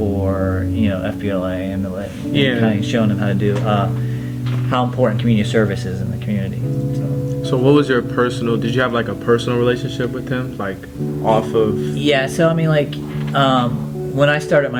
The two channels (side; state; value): both; identical; correlation 1.00